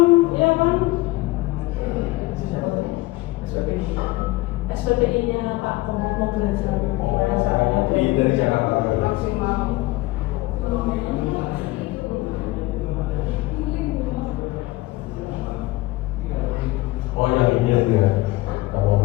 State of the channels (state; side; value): quieter; right; 19.7 dB